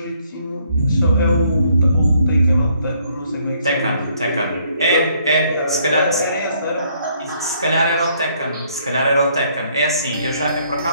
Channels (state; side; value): inverted; both; correlation -0.67